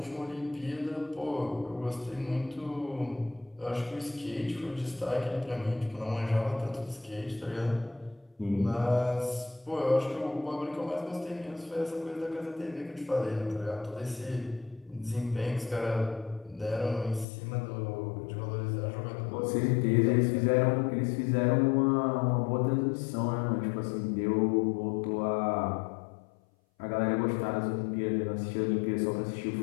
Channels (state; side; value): drops out; right; at 17.2 s